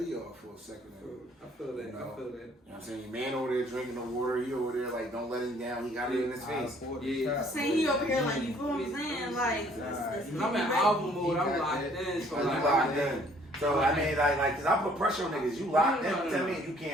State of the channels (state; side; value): normal; both; correlation 0.60